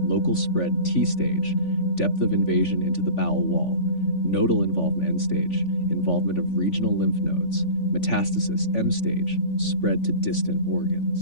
local spread T stage, depth of invasion into the bowel wall, nodal involvement N stage, involvement of regional lymph nodes, metastasis M stage, spread to distant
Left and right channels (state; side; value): late; right; 3.5 ms